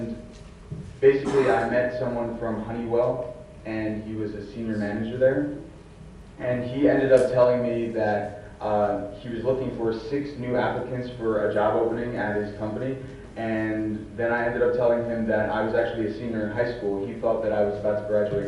basically I met someone from Honeywell, and he was a senior manager there, and he ended up telling me that he was looking for 6 new applicants for a job opening at his company, and then I ended up telling him that I was actually a senior in high school. He thought that I was about to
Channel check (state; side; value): identical; both; correlation 1.00